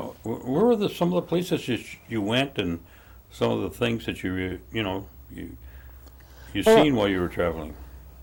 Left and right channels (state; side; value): identical; both; correlation 1.00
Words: were some of the places you went, and some of the things that you seen while you were traveling?